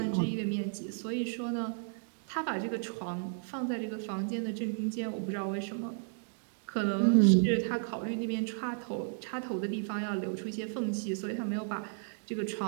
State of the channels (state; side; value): silent; left; digital silence